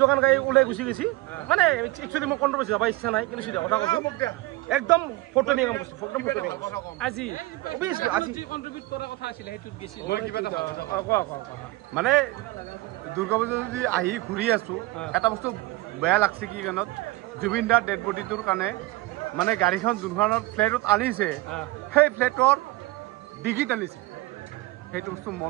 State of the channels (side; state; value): left; quieter; 19.7 dB